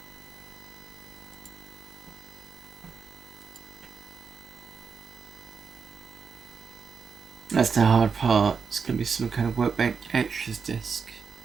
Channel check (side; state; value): left; quieter; 5.8 dB